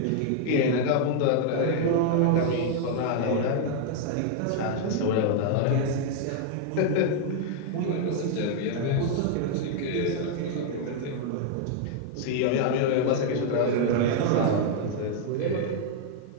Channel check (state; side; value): different; both; correlation 0.00